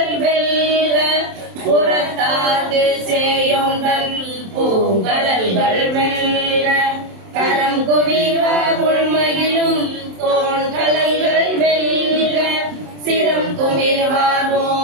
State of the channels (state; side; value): late; left; 27 ms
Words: வெல்க புறத்தாக்கு சேயோங்கள் பூங்கடல்கள் வெல்க கரம் குவிவ உள்மகிழும் தோன்கலல்கள் வெல்க சிரம் குவிவார்